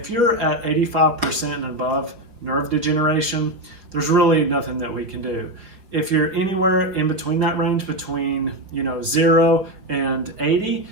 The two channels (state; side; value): late; left; 4.8 ms